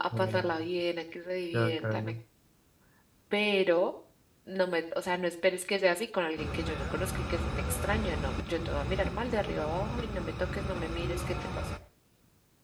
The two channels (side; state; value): both; identical; correlation 1.00